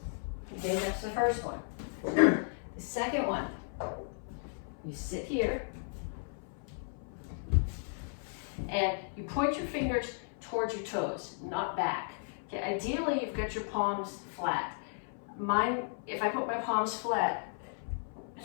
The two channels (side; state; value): right; silent; 55 dB below the other